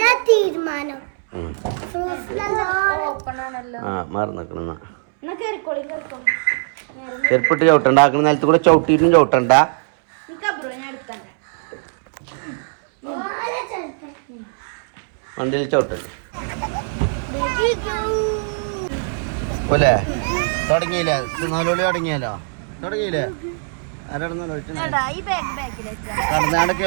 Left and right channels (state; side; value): silent; left; 65 dB below the other